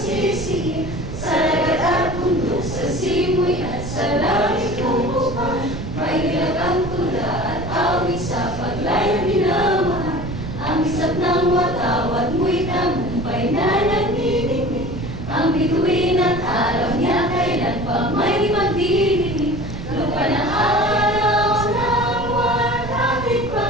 sa lagat at bundok, sa simoy at sa langit ng buwan. May nilagang tula at awit sa paglayang minamahal, ang isap ng watawat mo'y tagumpay na nagniningning, ang bituin at araw niya kailan pa may magdidinig. Lupa ng araw ng walang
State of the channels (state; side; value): noise; right; rumble, 8 dB below the sound